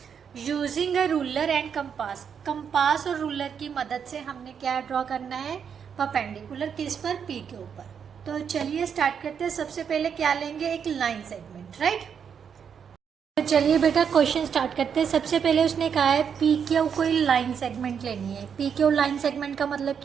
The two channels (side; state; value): left; quieter; 7.3 dB